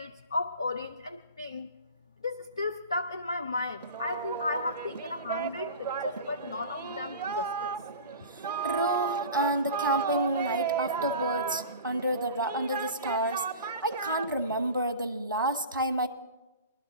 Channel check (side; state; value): both; inverted; correlation -0.36